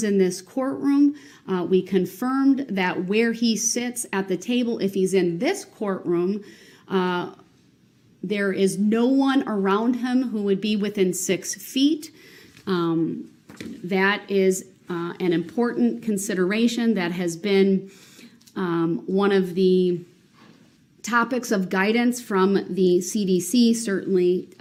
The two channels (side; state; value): both; identical; correlation 1.00